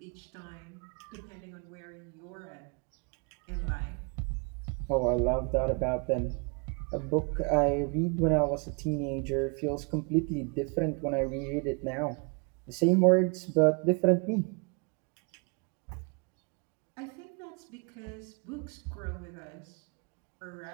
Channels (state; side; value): quieter; left; 34.6 dB